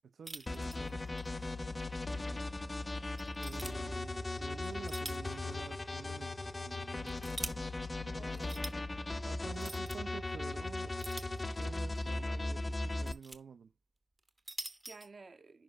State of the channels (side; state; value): both; normal; correlation 0.96